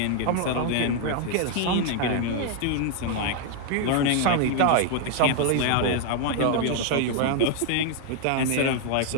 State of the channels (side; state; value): both; different; correlation 0.00